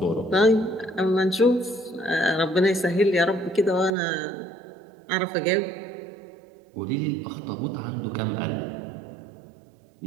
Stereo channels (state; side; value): drops out; left; at 3.9 s